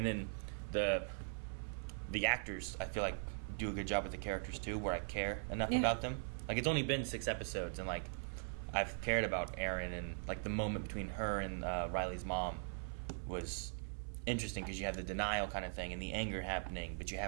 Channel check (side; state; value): left; silent; 50 dB below the other